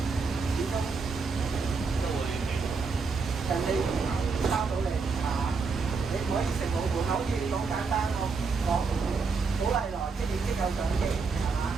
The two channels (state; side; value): quieter; left; 4.8 dB